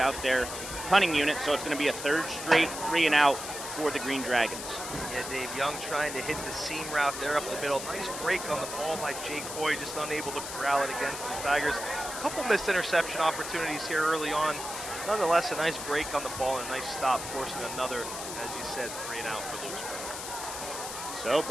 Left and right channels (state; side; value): noise; left; hiss, 7 dB below the sound